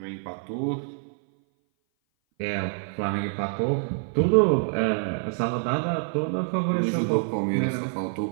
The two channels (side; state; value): left; silent; 58 dB below the other